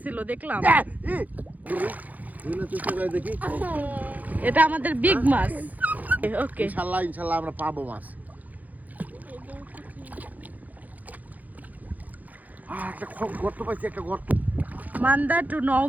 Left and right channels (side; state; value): left; late; 0.080 ms